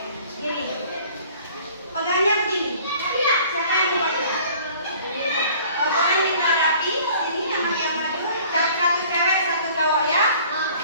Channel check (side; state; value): both; inverted; correlation -0.51